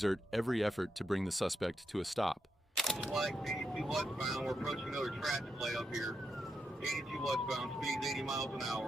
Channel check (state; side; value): normal; both; correlation 0.83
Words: every effort to bring the suspect to a stop. Like 82 westbound, we're approaching another traffic light up here. 82 westbound, speeds 80 miles an